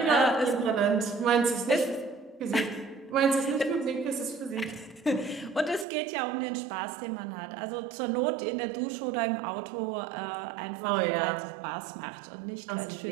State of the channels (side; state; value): left; drops out; at 5.9 s